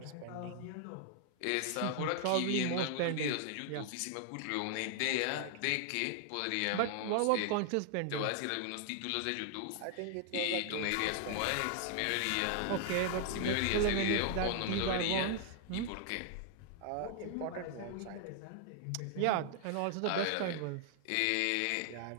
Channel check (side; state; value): both; different; correlation 0.00